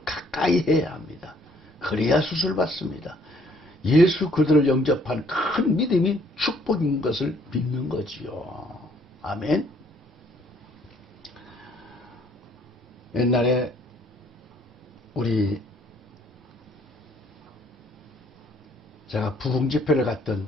가까이 해야 합니다. 그래야 수술받습니다. 예수 그들을 영접한 큰 믿음이 축복인 것을 믿는 거지요. 아멘. 옛날에 제가 부흥 집회를 갔던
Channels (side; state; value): both; normal; correlation 0.63